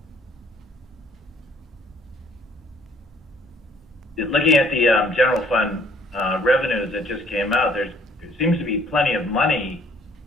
Looking at the general fund revenues that just came out, there seems to be plenty of money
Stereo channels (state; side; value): normal; both; correlation 0.60